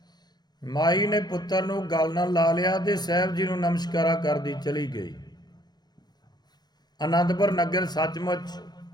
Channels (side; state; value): right; late; 0.20 ms